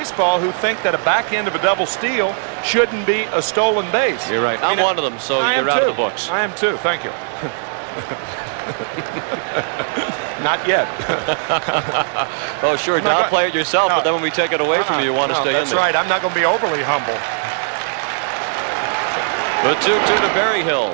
who think that a back end of a double steal shouldn't be a stolen base. You're right. I'm one of them, so you're out of the books. I am too. Thank you. Not yet. Oh, sure. Downplay it yourself, but then when we take it away from you, you want to stay in there. That's right. I'm not going to be overly humble. The 2-2 to Berryhill.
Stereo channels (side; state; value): left; silent; digital silence